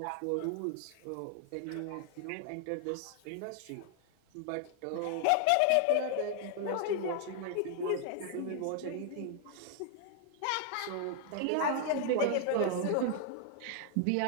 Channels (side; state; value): both; different; correlation 0.00